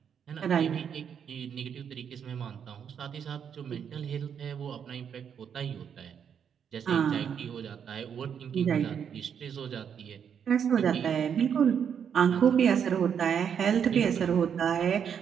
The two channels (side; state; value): left; quieter; 7.8 dB